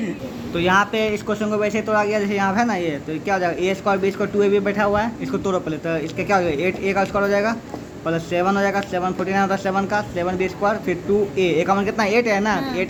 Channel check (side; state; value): both; identical; correlation 1.00